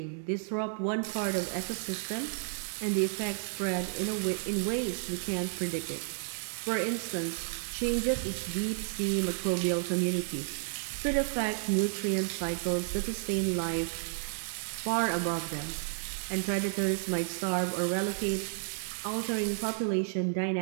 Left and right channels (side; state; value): left; silent; digital silence